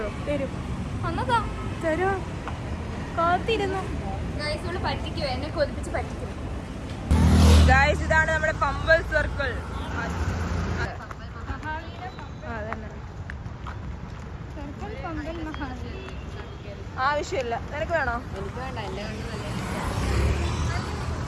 തരുമോ? കാത്തിരുന്നു. എന്നെ കൊതിപ്പിച്ച് പറ്റിക്കും. ഗായ്സ്, ഇതാണ് നമ്മുടെ പമ്പൽ സർക്കിൾ. ആവശ്യമില്ല. നിനക്ക് വേണോ?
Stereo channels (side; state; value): both; identical; correlation 1.00